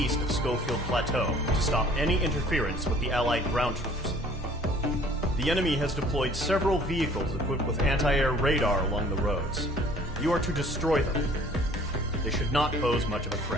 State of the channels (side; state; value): both; normal; correlation 0.53